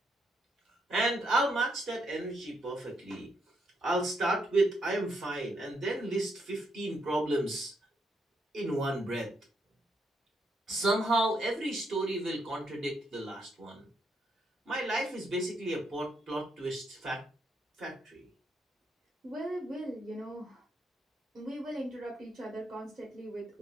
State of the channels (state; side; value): normal; both; correlation 0.77